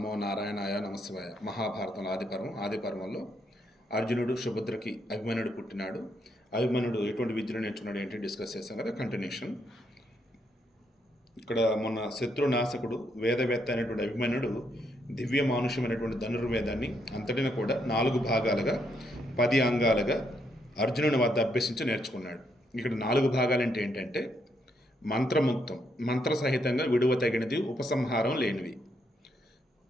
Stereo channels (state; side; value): normal; both; correlation 0.76